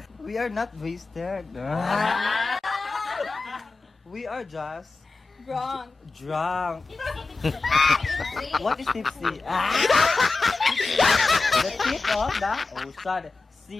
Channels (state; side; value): quieter; right; 3.8 dB